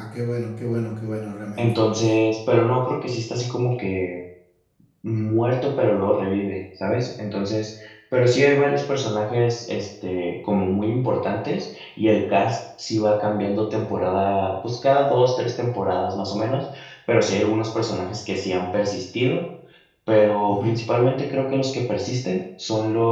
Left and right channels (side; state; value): both; identical; correlation 1.00